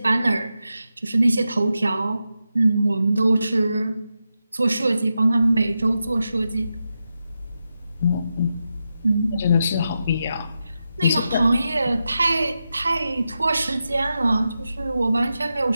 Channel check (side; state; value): both; inverted; correlation -0.89